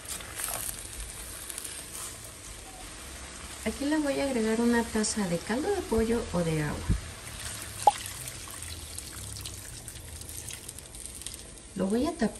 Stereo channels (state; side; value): identical; both; correlation 1.00